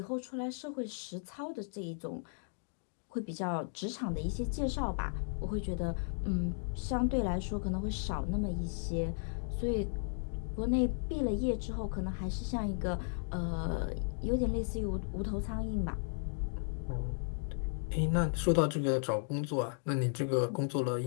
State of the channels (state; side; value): silent; right; digital silence